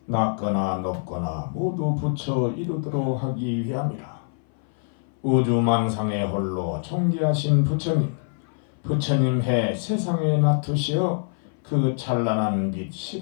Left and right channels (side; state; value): right; silent; 57 dB below the other